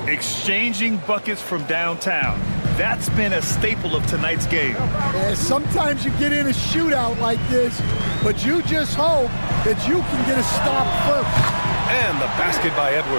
Exchanging buckets from downtown. That's been a staple of tonight's game. Yeah, sometimes you get in a shootout like this, but you just hope that you can get a stop first. And the basket by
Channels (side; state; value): both; inverted; correlation -1.00